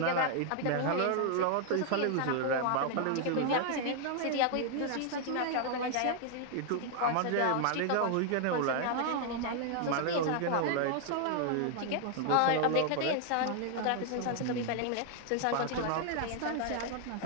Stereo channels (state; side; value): different; both; correlation 0.00